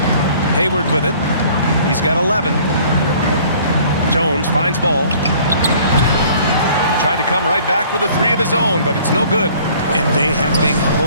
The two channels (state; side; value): inverted; both; correlation -0.54